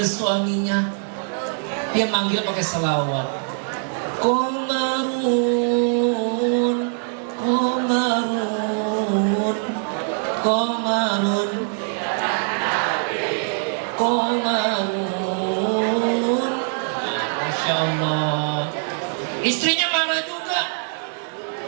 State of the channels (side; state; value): left; silent; digital silence